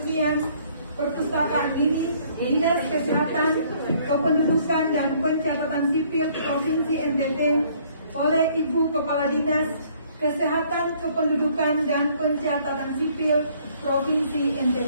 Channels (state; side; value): inverted; both; correlation -0.62